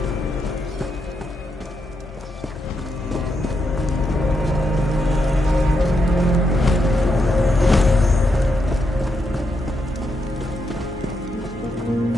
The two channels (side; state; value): both; normal; correlation 0.82